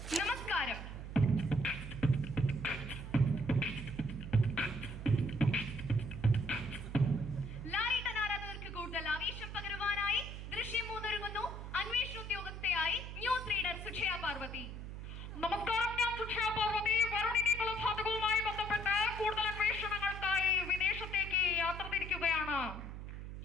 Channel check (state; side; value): noise; right; hum, 8 dB below the sound